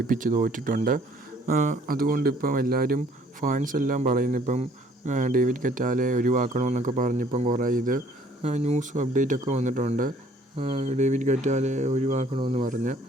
തോറ്റിട്ടുണ്ട്. അതുകൊണ്ട് ഇപ്പം എല്ലാവരും ഫാൻസ് എല്ലാം പറയുന്നു ഇപ്പം ഡേവിഡ് കറ്റാലെ ഒഴിവാക്കണമെന്നൊക്കെ പറഞ്ഞിപ്പം കുറേ ന്യൂസും അപ്ഡേറ്റൊക്കെ വന്നിട്ടുണ്ട്. ഡേവിഡ് കറ്റാലെ ഒഴിവാക്കണമെന്ന് പറഞ്ഞ്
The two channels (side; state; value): both; normal; correlation 0.59